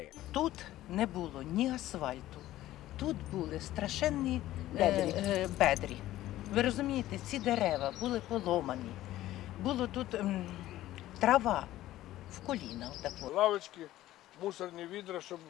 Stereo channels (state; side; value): quieter; right; 14.8 dB